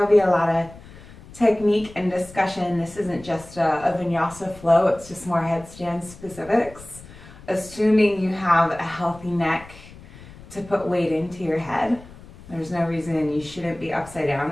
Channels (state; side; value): noise; left; rumble, 19 dB below the sound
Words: be a lot of technique and discussion, this isn't just a vinyasa flow, it's just more headstand specifics, assuming you have a healthy neck to put weight into your head. There's no reason you shouldn't be upside down.